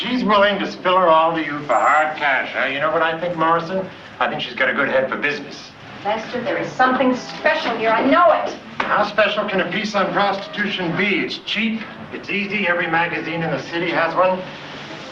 willing to spill her all to you for hard cash, huh? You know what I think, Morrison? I think she's got a good head for business. Lester, there is something special here. I know it. How special can a piece on prostitution be? It's cheap, it's easy, every magazine in the city has one.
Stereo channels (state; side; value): identical; both; correlation 1.00